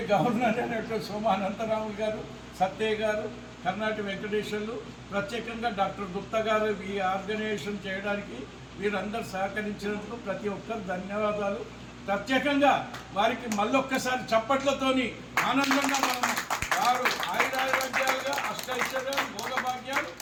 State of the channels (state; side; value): identical; both; correlation 1.00